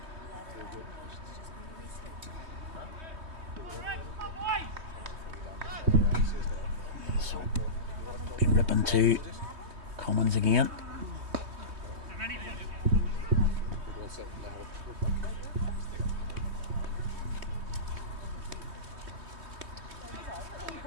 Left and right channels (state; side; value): late; left; 3.2 ms